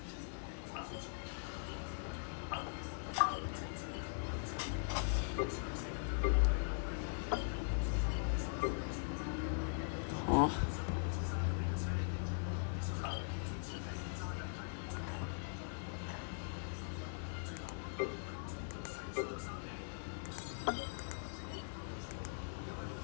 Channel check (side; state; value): right; silent; digital silence